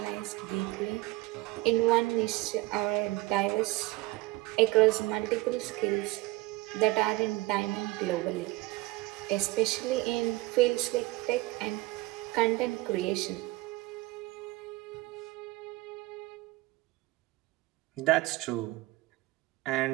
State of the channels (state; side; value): quieter; left; 20.3 dB